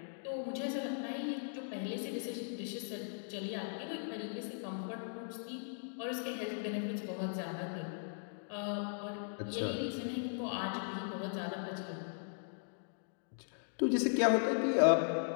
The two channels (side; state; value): right; silent; digital silence